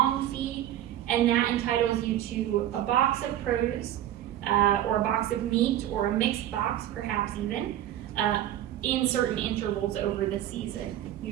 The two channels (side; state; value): left; quieter; 12.3 dB